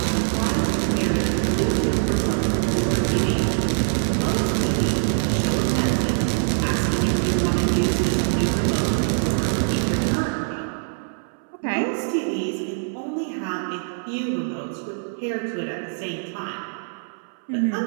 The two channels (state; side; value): silent; left; 63 dB below the other